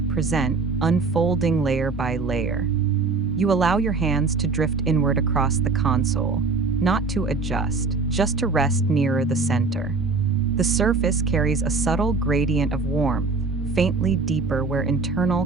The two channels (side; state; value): left; quieter; 4.2 dB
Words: present, unfolding layer by layer. You allow your hands to drift inward across the console, not to adjust, just to rest nearer the center. The surface carries a subtle gradient of warmth, faintly deeper where internal